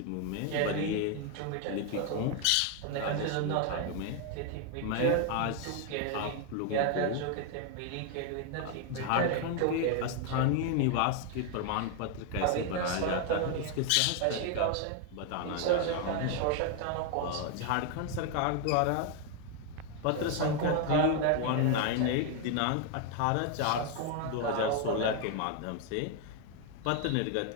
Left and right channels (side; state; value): both; different; correlation 0.01